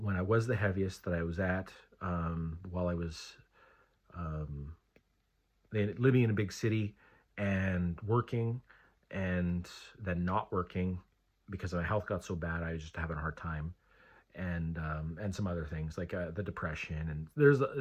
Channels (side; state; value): both; identical; correlation 1.00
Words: when I was the heaviest that I was at while I was living in a big city and working, and then not working because my health got so bad I was just having a hard time, and some other things like the depression, and there's